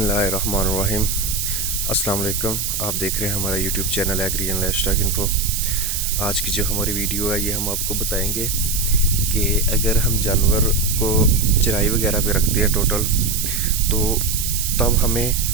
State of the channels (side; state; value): right; noise; hiss, 2 dB below the sound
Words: अस्सलाम वालेकुम। आप देख रहे हैं हमारा YouTube channel agri and lifestyle info. आज की जो हमारी वीडियो है ये हम आपको बताएंगे कि अगर हम जानवर को चराई वगैरह पे रखते हैं टोटल, तो तब